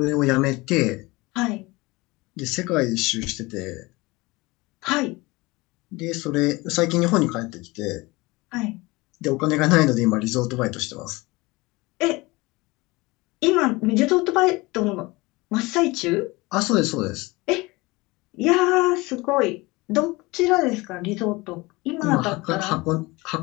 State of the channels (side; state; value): right; quieter; 22.8 dB